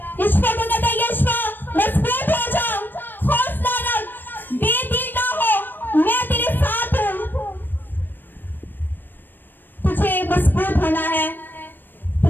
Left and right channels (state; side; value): late; right; 0.093 ms